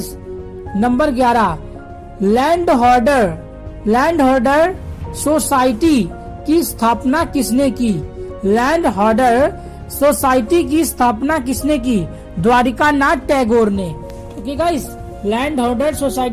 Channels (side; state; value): both; identical; correlation 1.00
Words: नंबर 11, लैंड होल्डर सोसाइटी की स्थापना किसने की? लैंड होल्डर सोसाइटी की स्थापना किसने की? द्वारिका नाथ टैगोर ने। Okay guys, land holder